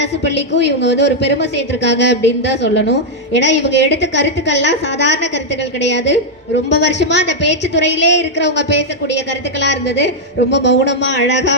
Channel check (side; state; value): both; normal; correlation -0.02